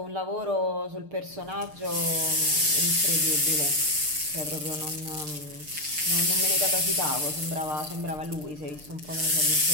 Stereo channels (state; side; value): late; left; 6.6 ms